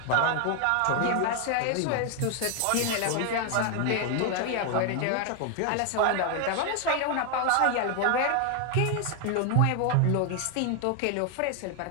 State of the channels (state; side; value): different; both; correlation 0.00